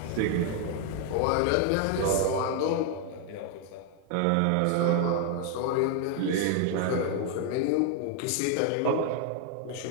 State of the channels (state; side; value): different; both; correlation 0.00